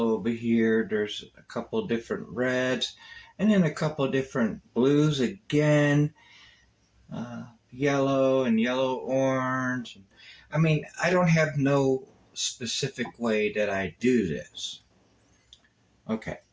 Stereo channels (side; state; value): both; identical; correlation 1.00